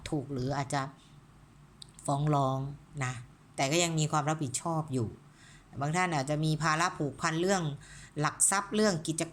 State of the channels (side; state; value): both; identical; correlation 1.00